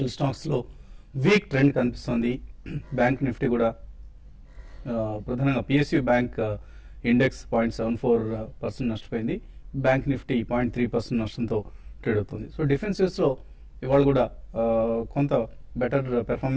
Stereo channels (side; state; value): both; identical; correlation 1.00